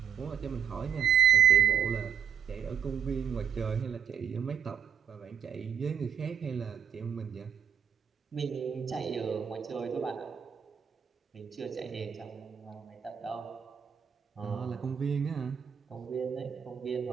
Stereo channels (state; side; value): quieter; left; 8.2 dB